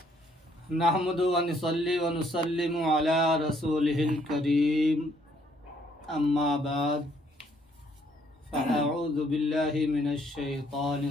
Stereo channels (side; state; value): both; normal; correlation 0.67